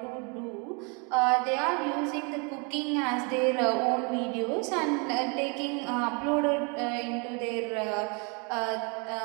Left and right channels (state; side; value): quieter; left; 33.6 dB